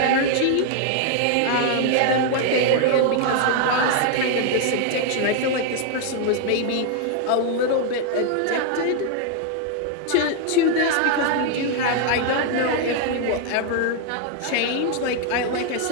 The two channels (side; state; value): both; different; correlation 0.00